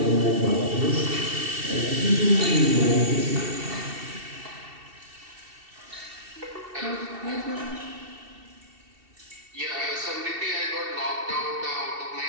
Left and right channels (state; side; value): late; left; 2.7 ms